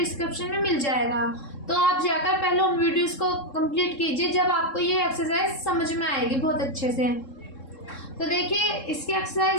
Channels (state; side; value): late; right; 3.7 ms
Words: में मिल जाएगा। तो आप जाकर पहले उन वीडियोस को कंप्लीट कीजिए, जब आपको ये एक्सरसाइज समझ में आएगी बहुत अच्छे से। तो देखिए, इसकी